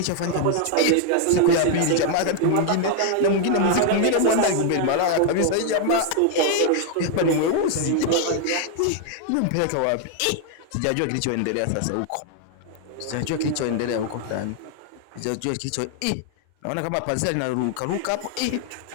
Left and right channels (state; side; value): different; both; correlation 0.00